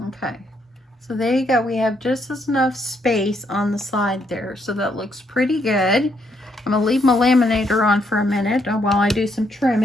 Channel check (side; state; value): both; normal; correlation 0.74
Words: Okay, so there you go. We have just enough space on the side there, so that looks pretty good. I'm going to leave my laminator on for a minute while I do some